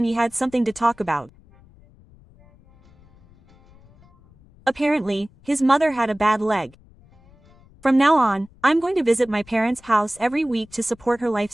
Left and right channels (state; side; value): noise; left; rumble, 27 dB below the sound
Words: he had something to talk about. Apparently, his mother had a bad leg. From now on, I'm going to visit my parents' house every week to support her